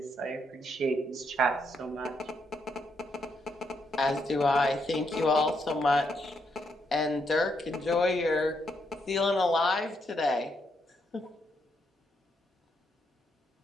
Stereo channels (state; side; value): normal; both; correlation 0.78